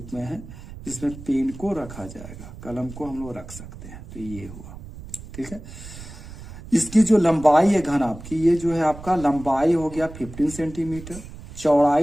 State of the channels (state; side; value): noise; right; rumble, 14 dB below the sound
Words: में है, जिसमें पेन को रखा जाएगा, कलम को हम लोग रख सकते हैं। तो ये हुआ, ठीक है। इसकी जो लंबाई है घनाभ की, ये जो है आपका लंबाई हो गया 15 सेंटीमीटर,